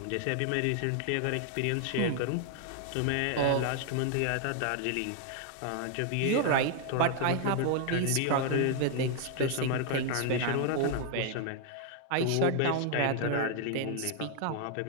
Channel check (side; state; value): both; different; correlation 0.00